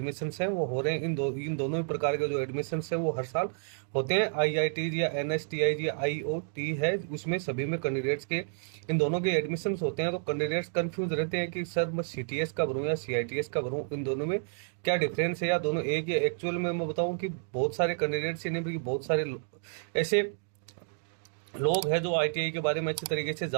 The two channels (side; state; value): left; silent; digital silence